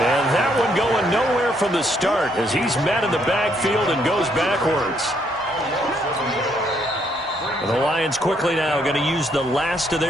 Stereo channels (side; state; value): both; normal; correlation 0.71